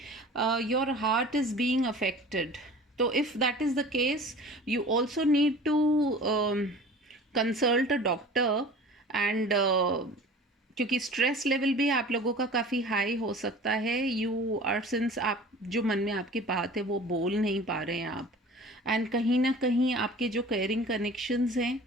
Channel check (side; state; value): both; normal; correlation 0.42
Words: your heart is being affected. So if that is the case, you also need to consult a doctor. And क्योंकि स्ट्रेस लेवल भी आप लोगों का काफ़ी हाई हो सकता है। यू आर, सिंस आप जो मन में आपकी बात है वो बोल नहीं पा रहे हैं आप, एंड कहीं ना कहीं आपके जो केयरिंग कनेक्शंस हैं